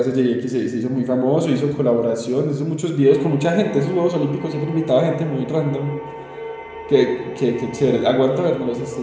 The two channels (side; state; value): both; identical; correlation 1.00